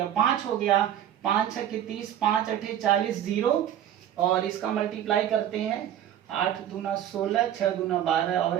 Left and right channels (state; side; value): quieter; left; 10.8 dB